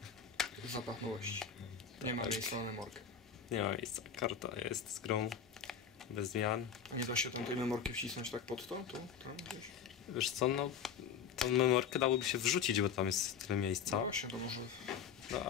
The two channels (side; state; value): right; quieter; 7.0 dB